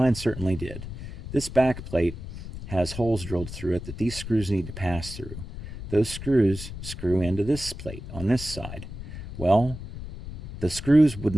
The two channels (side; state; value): left; noise; rumble, 10 dB below the sound